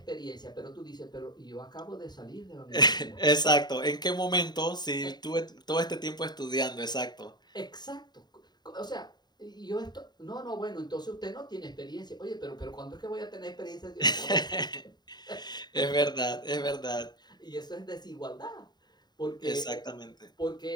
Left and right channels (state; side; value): late; right; 0.20 ms